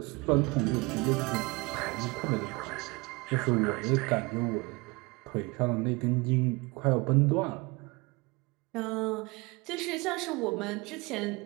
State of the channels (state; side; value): quieter; left; 25.8 dB